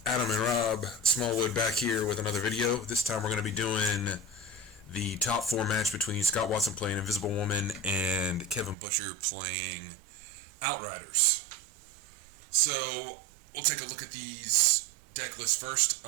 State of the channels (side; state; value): left; drops out; at 8.8 s